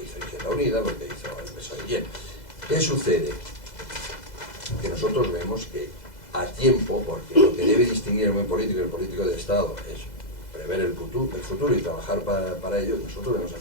hizo Izquierda Unida, lo que hizo el PSOE. Bien, ¿qué sucede? Que nosotros vemos que a tiempo, porque lo que debe distinguir el buen político y el político de Estado es prever el futuro y trabajar para ello, nosotros vemos a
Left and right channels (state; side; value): late; right; 2.0 ms